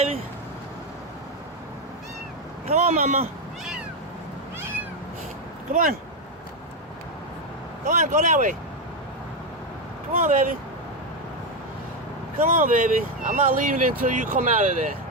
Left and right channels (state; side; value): normal; both; correlation 0.07